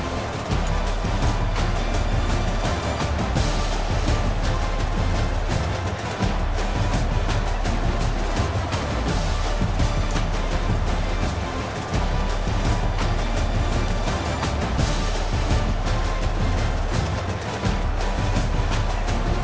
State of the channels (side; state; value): both; identical; correlation 1.00